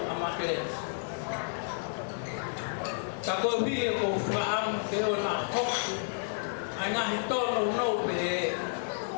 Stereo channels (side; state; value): right; silent; 57 dB below the other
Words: ama que Tako vi ko faam ke o na hok ana hito no te